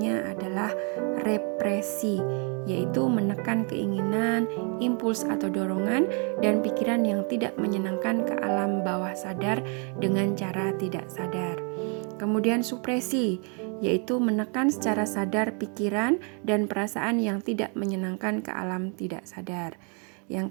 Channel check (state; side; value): quieter; left; 37.5 dB